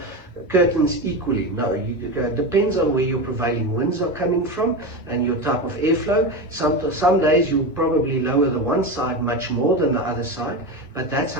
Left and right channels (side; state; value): both; normal; correlation 0.20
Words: curtains equally. No, it depends on where your prevailing winds are coming from and your type of airflow. Some days you'll probably lower the one side much more than the other side, but that's